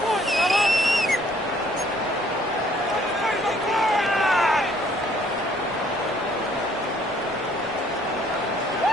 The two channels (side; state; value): both; normal; correlation 0.61